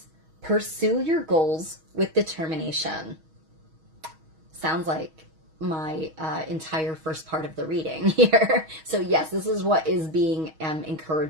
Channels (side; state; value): left; late; 6.3 ms